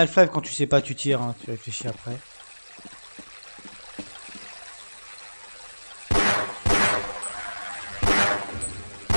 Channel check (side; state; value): both; inverted; correlation -1.00